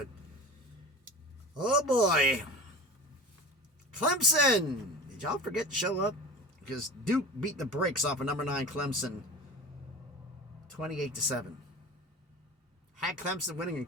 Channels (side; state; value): both; normal; correlation 0.34